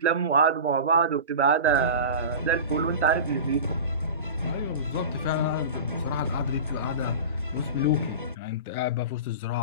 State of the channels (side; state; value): both; inverted; correlation -0.32